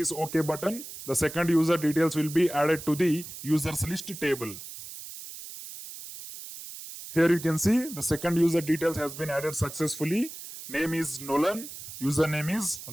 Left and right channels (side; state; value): right; noise; hiss, 12 dB below the sound